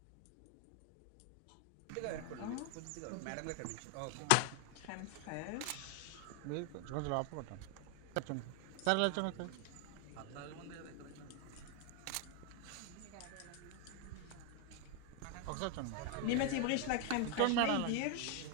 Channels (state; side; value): different; both; correlation 0.01